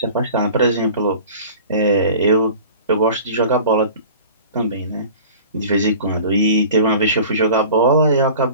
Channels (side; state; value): both; inverted; correlation -0.42